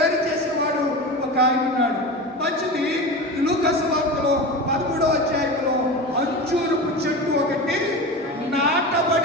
చేసేవాడు ఒక ఆయన ఉన్నాడు. మంచిది. లూకా సువార్తలో 13వ అధ్యాయంలో అంజూరపు చెట్టు ఒకటి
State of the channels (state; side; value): normal; both; correlation 0.27